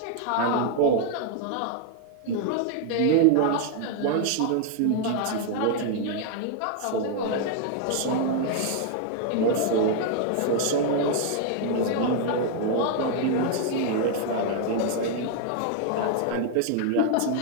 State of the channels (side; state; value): both; different; correlation 0.00